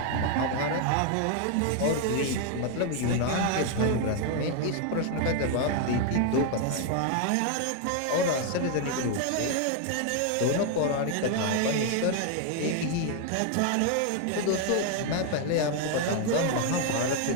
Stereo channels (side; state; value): both; different; correlation 0.00